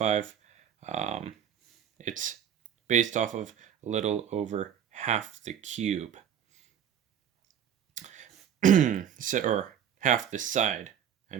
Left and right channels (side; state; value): left; quieter; 9.1 dB